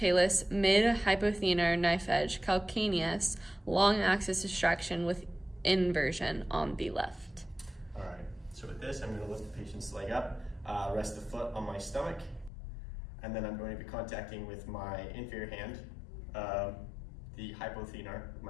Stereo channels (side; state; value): right; drops out; at 12.5 s